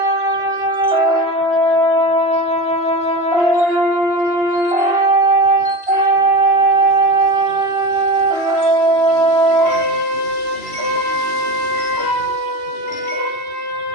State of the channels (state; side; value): late; left; 2.7 ms